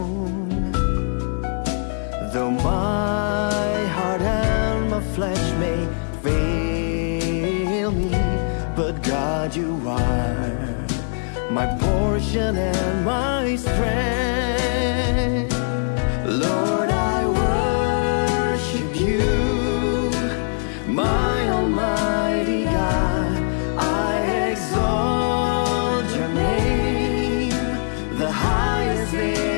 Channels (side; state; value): right; silent; digital silence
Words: Though my heart and my flesh may fail me, but God, you are my portion and my strength. Lord, I worship you, my Almighty God. I exalt your name, the highest